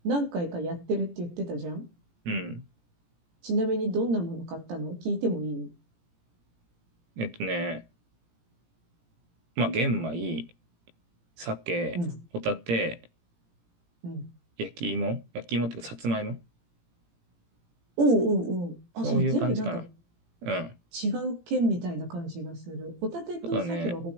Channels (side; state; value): left; late; 17 ms